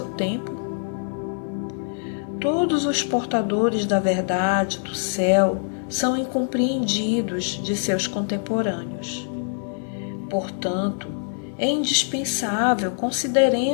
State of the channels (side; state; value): right; silent; digital silence